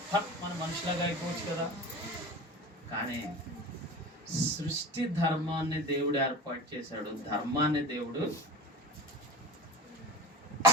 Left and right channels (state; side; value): normal; both; correlation 0.34